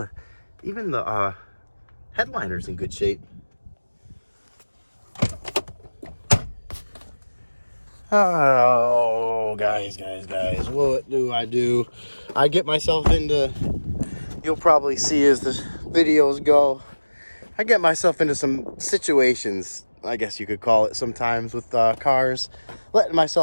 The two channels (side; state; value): both; inverted; correlation -1.00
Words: even the headliner's in good shape. Oh, guys, what do? I get myself into, you'll probably see as the videos go, I get myself into some situations, I guess you could call it sometimes, with cars, letting